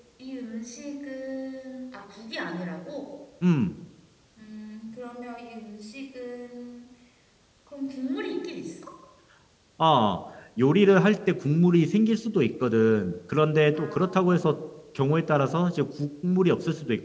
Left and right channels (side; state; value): both; identical; correlation 1.00